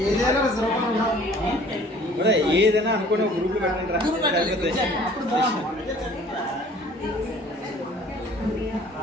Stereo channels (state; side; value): normal; both; correlation 0.52